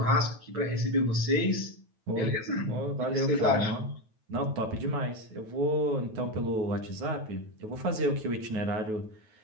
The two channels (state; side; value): late; left; 9.3 ms